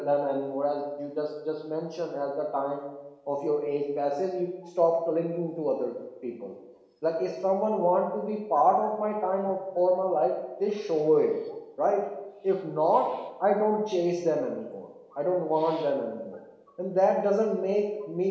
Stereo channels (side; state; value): both; identical; correlation 1.00